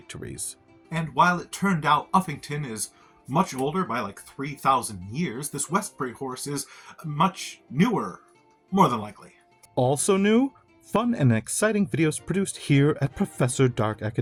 And while it turned out Uffington is much older by like 3,000 years, this Westbury horse is much newer, more than likely. Also new, fun and exciting videos produced here at Professor Dark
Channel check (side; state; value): both; identical; correlation 1.00